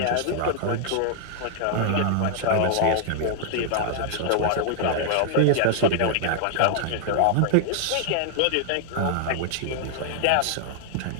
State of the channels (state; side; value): different; both; correlation 0.00